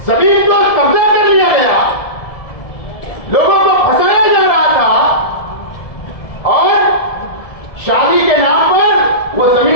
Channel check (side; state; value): right; late; 1.7 ms